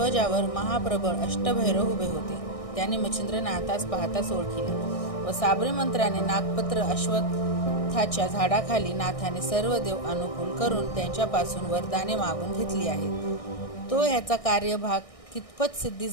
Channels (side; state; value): right; late; 1.6 ms